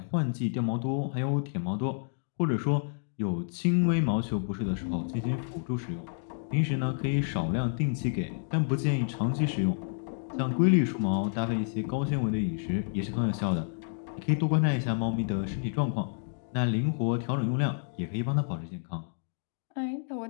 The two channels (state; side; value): silent; right; digital silence